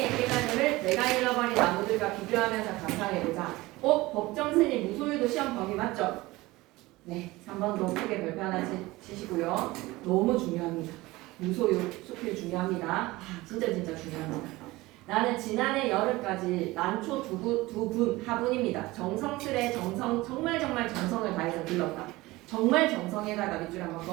깨달음을 내가 잃어버린 나무들과 비교하면서 감상해보자. 법정 스님 무소유도 시험 범위 맞죠? 네, 3번도 크게 별표 하나 치시고요. 너무 중요합니다. 무소유 수필 중요합니다. 진짜 중요합니다. 나는 지난해 여름까지 난초 두 분 하분입니다. 정성스레 정말 정성을 다해서 길렀다. 정말 정성에다가 밑줄 한번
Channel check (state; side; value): quieter; left; 20.0 dB